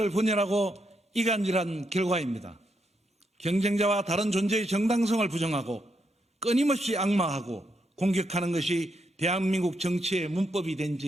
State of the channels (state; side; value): normal; both; correlation 0.80